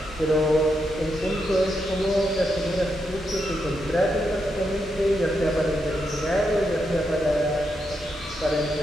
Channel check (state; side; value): normal; both; correlation 0.83